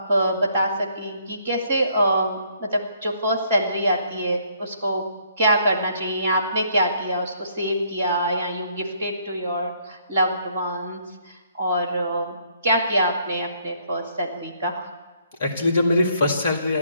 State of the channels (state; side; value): inverted; both; correlation -0.67